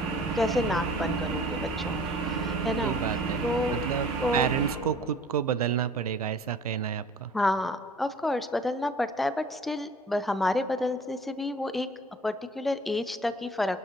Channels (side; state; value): both; normal; correlation 0.49